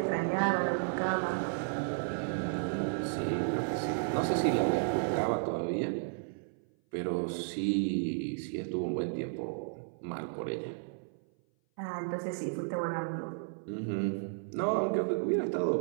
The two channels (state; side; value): silent; left; 56 dB below the other